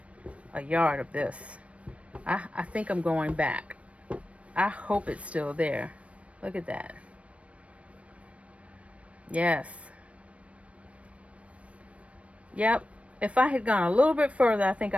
a yard of this. I think I'm going back. I hope it's still there. Look at that. Yes. Yep. If I had gone a little bit further, I think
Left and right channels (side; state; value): left; late; 0.063 ms